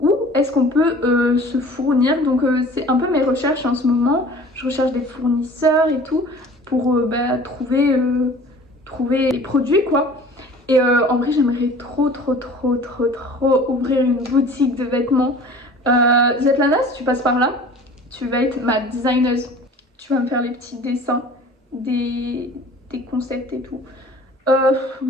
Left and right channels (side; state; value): both; normal; correlation 0.45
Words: où est-ce qu'on peut se fournir. Donc c'est un peu mes recherches en ce moment. Je recherche des fournisseurs et tout pour trouver les produits quoi. Et en vrai j'aimerais trop ouvrir une boutique de vêtements. Svetlana, si tu passes par là, tu vas être ma designeuse. Tu vas me faire les petits dessins des concepts et tout.